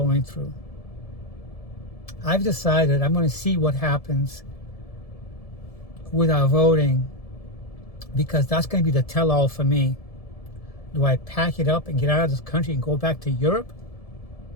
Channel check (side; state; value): right; late; 1.7 ms